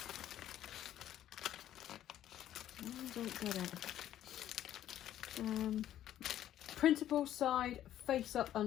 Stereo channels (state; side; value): quieter; right; 11.9 dB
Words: I don't get it. Printable side, face up